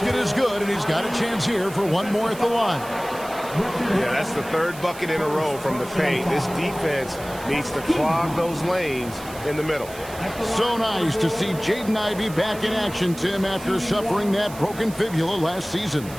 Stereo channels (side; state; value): right; noise; hiss, 16 dB below the sound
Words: is good, and he's got a chance here for 1 more at the line. Yeah, that's the 3rd bucket in a row from the paint. This defense needs to clog those lanes in the middle. So nice to see Jaden Ivey back in action, Tim, after suffering that broken fibula last season.